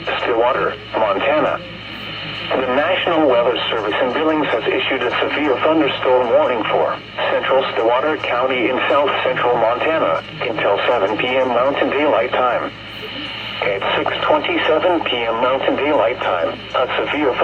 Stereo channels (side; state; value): both; identical; correlation 1.00